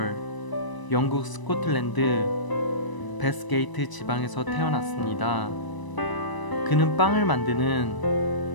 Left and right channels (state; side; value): late; right; 1.0 ms